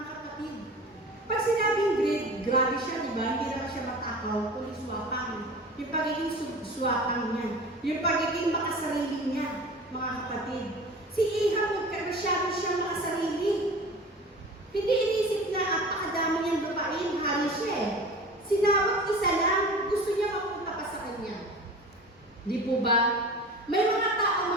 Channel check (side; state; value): both; normal; correlation 0.38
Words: kapatid. Pag sinabing greed, grabe siya, di ba? Hindi lang siya matakaw, kundi swapang. Yung pagiging swapang niya. Yung pagiging makasarili niya, mga kapatid. Si Ahab, masyado siya makasarili. Hindi inisip na apakadami niyang lupain, hari siya eh. Sinabot isa lang, gusto niya mapunta pa sa kanya. Di po ba? May mga tao,